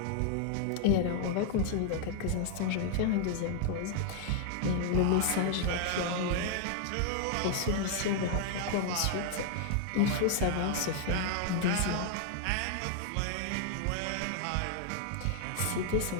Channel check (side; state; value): both; different; correlation 0.00